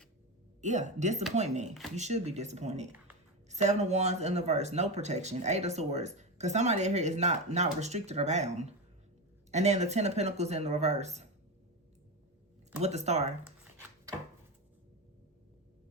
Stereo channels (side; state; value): both; normal; correlation 0.17